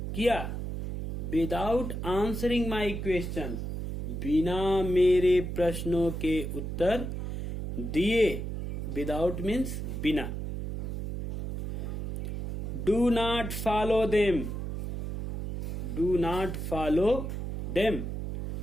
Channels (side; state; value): right; noise; hum, 4 dB below the sound